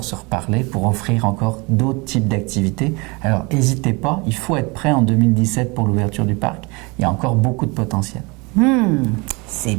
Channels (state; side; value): quieter; left; 27.4 dB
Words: se reparler pour offrir encore d'autres types d'activités. Alors n'hésitez pas, il faut être prêt en 2017 pour l'ouverture du parc. Il y a encore beaucoup de potentiel. C'est